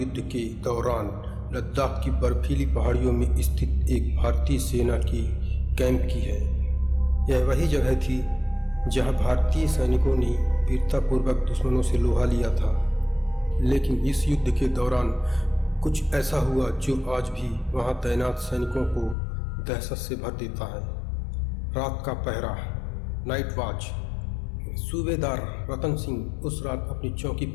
के दौरान लद्दाख की बर्फीली पहाड़ियों में स्थित एक भारतीय सेना की कैंप की है। यह वही जगह थी जहां भारतीय सैनिकों ने वीरतापूर्वक दुश्मनों से लोहा लिया था। लेकिन इस युद्ध के दौरान कुछ ऐसा हुआ जो आज भी वहां तैनात सैनिकों को दहशत से भर देता है। रात का पहरा, नाइट वॉच। सूबेदार रतन सिंह उस रात अपनी चौकी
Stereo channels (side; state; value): right; drops out; at 19.2 s